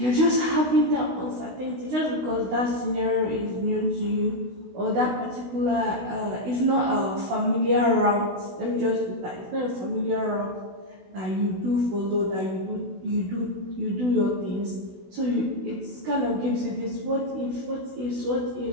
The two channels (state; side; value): late; left; 16 ms